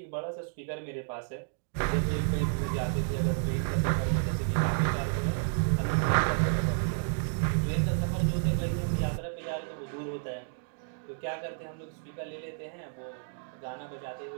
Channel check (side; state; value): left; silent; digital silence